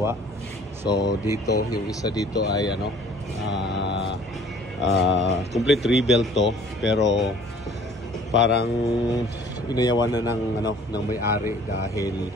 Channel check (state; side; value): normal; both; correlation 0.53